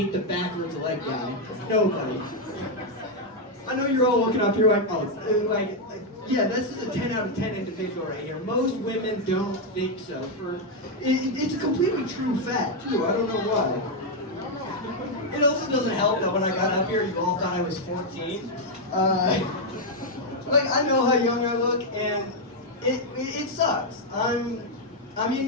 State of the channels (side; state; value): both; normal; correlation 0.00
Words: the backwards leg guy. Nobody. I know you're all looking up here yeah, this is a 10 out of 10 individual right here. Most women don't think so. It's a completely true fact, too. I don't know why. It also doesn't help that when I got up here, you all thought I was 14. I know how young I look, and it sucks. I'm